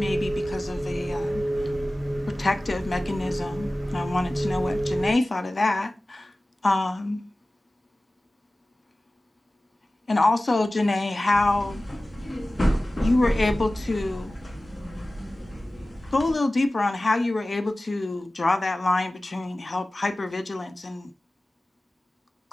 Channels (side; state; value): both; normal; correlation 0.97